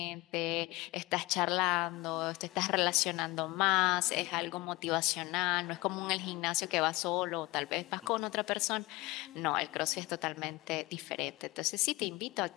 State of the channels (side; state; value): right; quieter; 21.7 dB